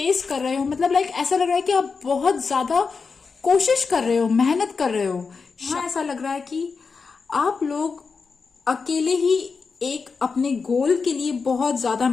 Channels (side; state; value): right; quieter; 5.0 dB